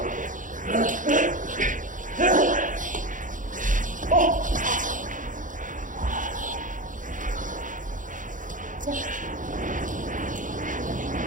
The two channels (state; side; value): late; left; 0.38 ms